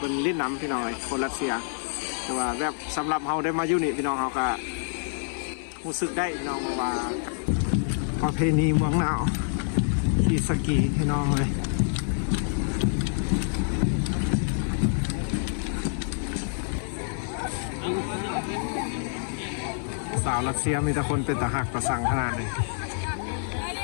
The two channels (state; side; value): silent; right; 57 dB below the other